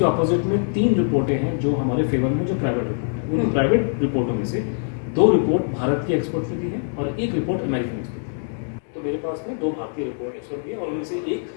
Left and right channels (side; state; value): right; silent; digital silence